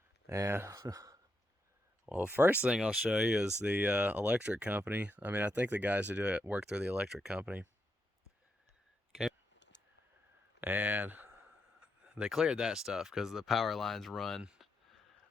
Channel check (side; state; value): both; normal; correlation 0.81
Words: And well, the first thing I'll show you is the electric company. I think the guys who do it work through the electric company. Okay. And they cleared that stuff because the power lines run